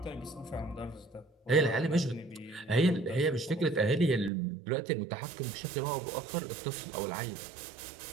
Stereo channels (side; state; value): left; drops out; at 4.3 s